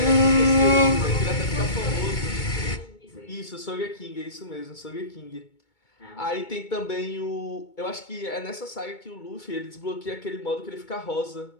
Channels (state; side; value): late; right; 2.2 ms